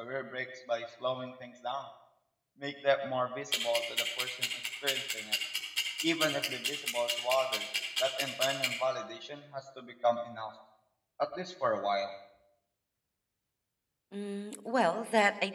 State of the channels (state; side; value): identical; both; correlation 1.00